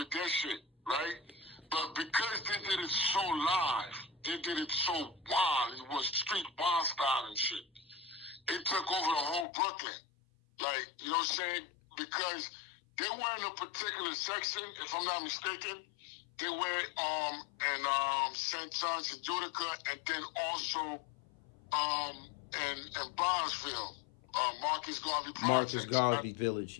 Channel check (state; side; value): drops out; right; at 9.5 s